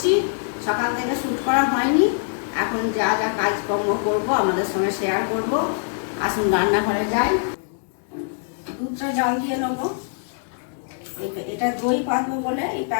সকাল থেকে শ্যুট করা হয়নি। এখন যা যা কাজকর্ম করব আমাদের সঙ্গে শেয়ার করব। আসুন রান্নাঘরে যাই। দুধটা জল দিয়ে নেবো। এটা দই পাতবো বলে এই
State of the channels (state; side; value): silent; right; digital silence